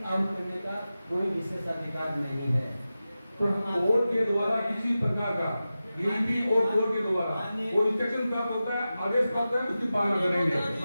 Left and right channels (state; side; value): inverted; both; correlation -0.94